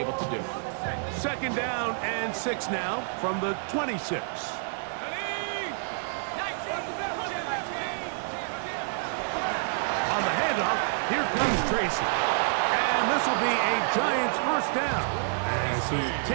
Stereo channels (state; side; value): silent; left; 59 dB below the other